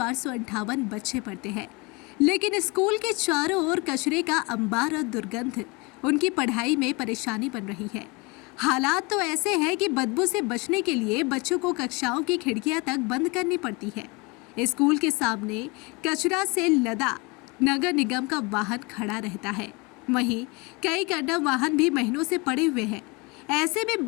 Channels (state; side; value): quieter; right; 27.3 dB